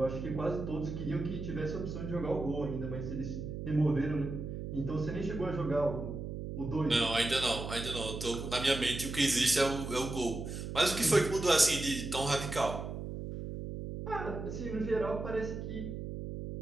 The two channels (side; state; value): right; noise; hum, 6 dB below the sound